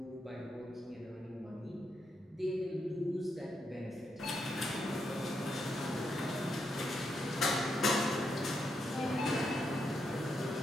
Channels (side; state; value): both; normal; correlation 0.81